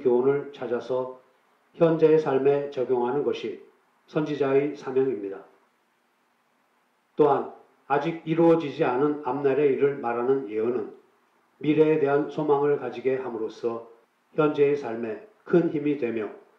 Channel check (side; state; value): both; identical; correlation 1.00